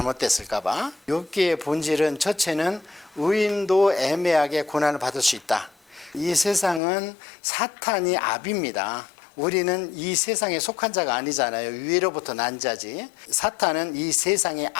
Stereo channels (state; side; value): drops out; right; at 6.8 s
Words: 욥기의 본질은 첫째는 의인도 애매하게 고난을 받을 수 있다. 이 세상은 사탄이 압입니다. 우리는 이 세상에 속한 자가 아니잖아요. 위로부터 난 자지. 사탄은 이 세상의